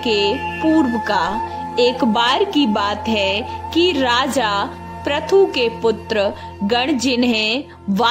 के पूर्व का। एक बार की बात है कि राजा पृथु के पुत्र गण, जिन्हें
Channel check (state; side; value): identical; both; correlation 1.00